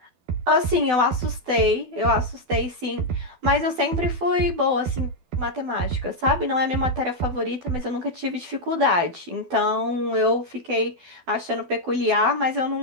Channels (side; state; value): left; late; 12 ms